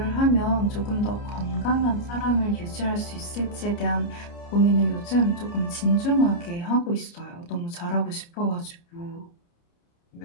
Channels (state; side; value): late; right; 29 ms